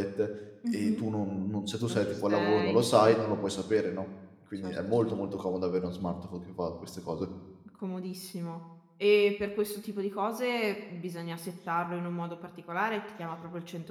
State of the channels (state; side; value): identical; both; correlation 1.00